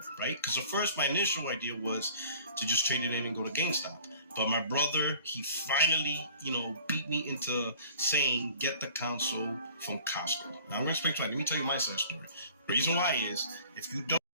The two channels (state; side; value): inverted; both; correlation -0.49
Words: right? Because at first, my initial idea was to just trade it in and go to GameStop. But my brother, he finally, beat me into saying, get the console from Costco. Now, I'm going to explain to you. Let me tell you my side story. The reason why is, if you don't